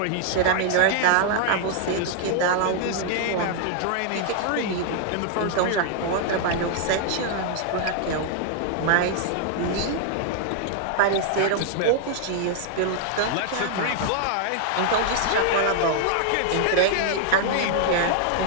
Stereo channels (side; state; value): both; different; correlation -0.01